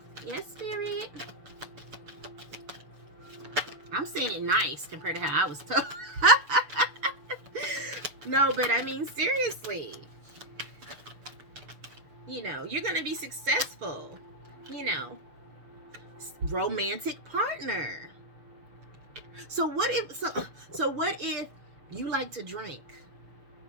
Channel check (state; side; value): late; left; 6.9 ms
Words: Yes, Spirit. I'm saying it nice compared to how I was told. No, but I mean, seriously. You know, you're going to be successful. You know, romantic partner. So what if you like to drink,